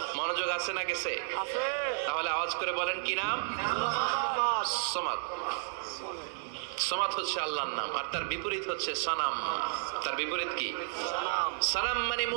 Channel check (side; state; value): left; silent; digital silence